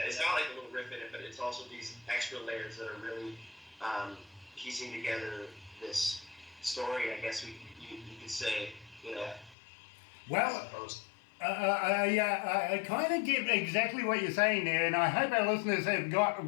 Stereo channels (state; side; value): drops out; right; at 9.6 s